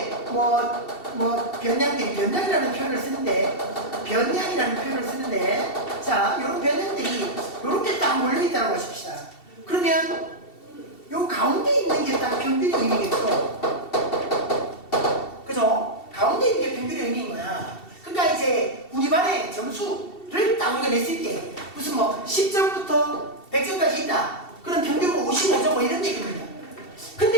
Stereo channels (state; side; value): late; right; 2.7 ms